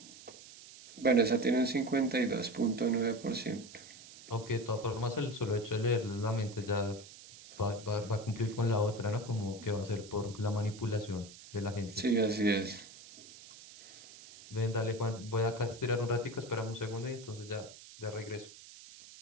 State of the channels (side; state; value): right; noise; hiss, 18 dB below the sound